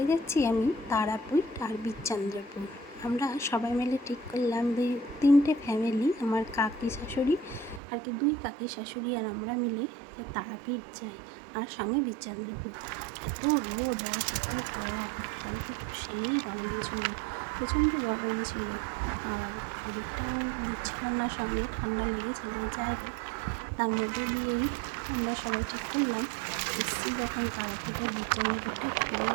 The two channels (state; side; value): drops out; left; at 7.8 s